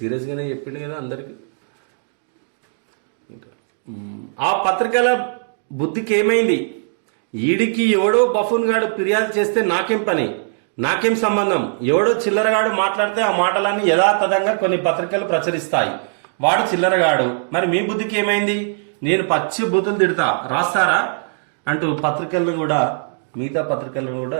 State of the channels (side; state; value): left; silent; digital silence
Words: చెప్పిండు కదా అందరికి. ఇంకా ఆ పత్రికల బుద్ధికి ఏమైంది? ఈడికి ఎవడో బఫూన్ గాడు ఫిర్యాదు చేస్తే నాకేం పని, నాకేం సంబంధం? ఎవడో చిల్లరగాడు మాట్లాడితే ఆ మాటలన్నీ యథాతథంగా కొన్ని పత్రికలు ప్రచురిస్తాయి. వాడు చిల్లరగాడు. మరి మీ బుద్ధికి ఏమైంది? నేను పచ్చి బూతులు తిడతా, రాస్తారా అంటూ పత్రికలను కూడా, మిగతా పత్రికలను కూడా